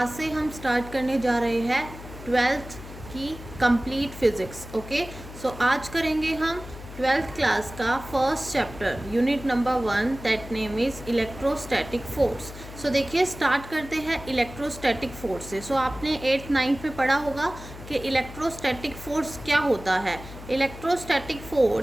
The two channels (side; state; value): left; noise; hum, 14 dB below the sound